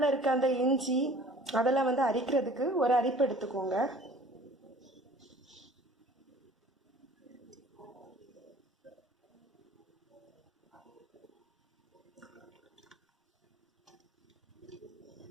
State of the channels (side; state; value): both; normal; correlation 0.49